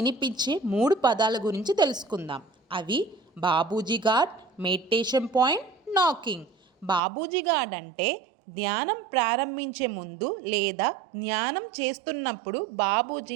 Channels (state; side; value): drops out; left; at 7.0 s